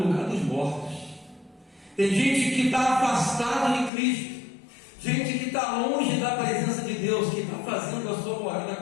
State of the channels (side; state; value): right; drops out; at 3.9 s